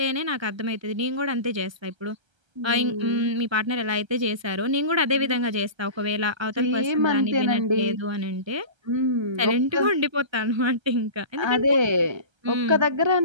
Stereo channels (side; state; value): left; late; 1.3 ms